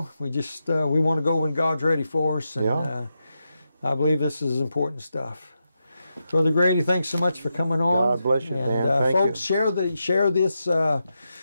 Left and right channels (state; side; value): inverted; both; correlation -0.87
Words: We just we want to go when God's ready for us, and I believe this is important stuff. Brother Grady, thanks so much for coming on. God bless you, and, man. Thank folks, you. Share this